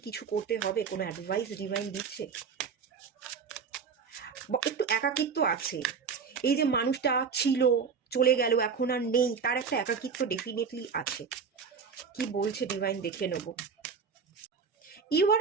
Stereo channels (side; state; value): left; quieter; 5.9 dB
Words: কিছু করতে হবে? কোনো অ্যাডভাইস ডিভাইন দিচ্ছে? একটু একাকিত্ব আছে, এই যে মানুষটা ছিল, চলে গেল, এখন আর নেই, তার একটা একাকিত্ব ডেফিনেটলি আছে। কি বলছে ডিভাইন দেখে নেব। You are